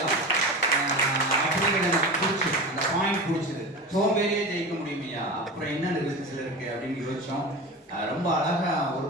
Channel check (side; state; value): both; normal; correlation 0.29